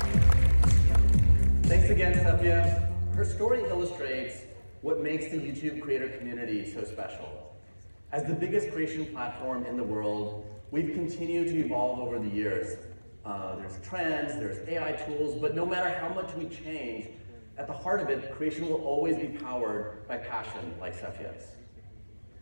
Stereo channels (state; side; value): inverted; both; correlation -1.00